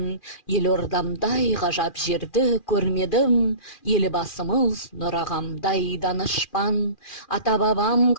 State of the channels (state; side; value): late; right; 2.4 ms